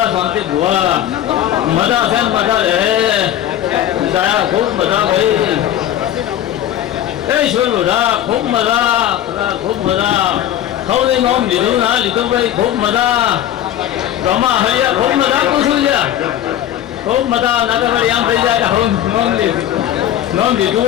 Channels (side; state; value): right; quieter; 11.7 dB